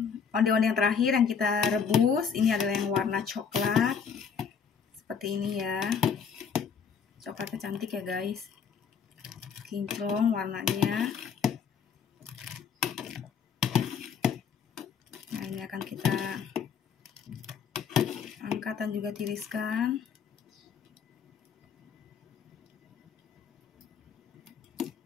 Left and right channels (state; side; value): quieter; right; 6.6 dB